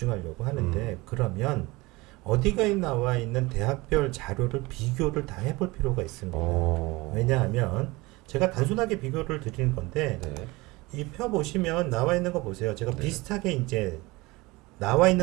하는데 그러면 어디가 나와 있는 대학별 자료를 비교를 다 해볼 필요가 있습니다. 왜냐하면 제가 단순하게 비교를 드리는 건데 네. 이 표 보시면 나와 있는 거 보세요. 제가 네. 비슷하게 이제 나와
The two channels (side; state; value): left; quieter; 22.6 dB